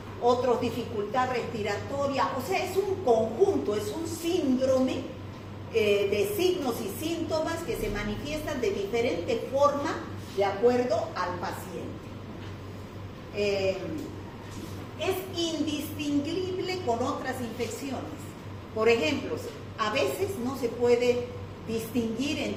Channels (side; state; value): both; identical; correlation 1.00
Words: otros dificultad respiratoria. O sea, es un conjunto, es un síndrome de signos y síntomas que se manifiestan de diferente forma de acuerdo al paciente. Es indistinguible con otras infecciones. Por ejemplo, a veces no se puede distinguir